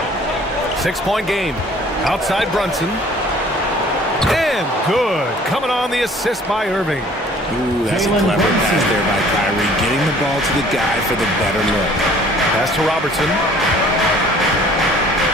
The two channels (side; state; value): both; normal; correlation 0.53